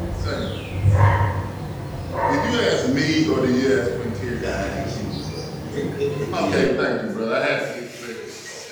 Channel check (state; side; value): identical; both; correlation 1.00